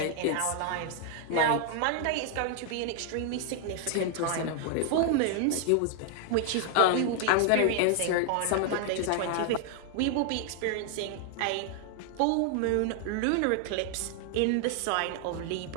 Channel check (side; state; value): both; different; correlation 0.00